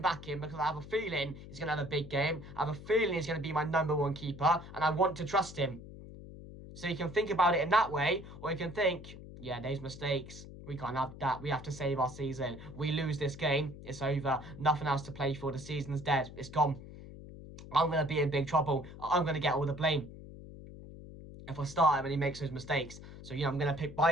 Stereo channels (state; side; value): noise; left; hum, 14 dB below the sound